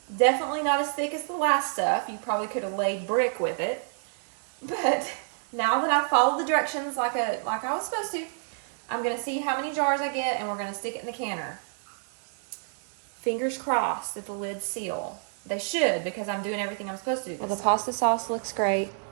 definitely not as thick as the last stuff. You probably could have laid brick with it. But now that I've followed the directions like I was supposed to, I'm going to see how many jars I get, and we're going to stick it in the canner. Fingers crossed that the lids seal. They should, because I'm doing everything I'm supposed to do. Well, the pasta sauce looks great.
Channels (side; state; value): left; silent; digital silence